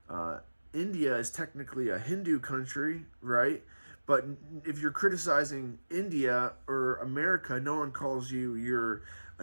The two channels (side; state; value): both; inverted; correlation -1.00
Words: India is technically a Hindu country, right? But if you're criticizing India or America, no one calls you're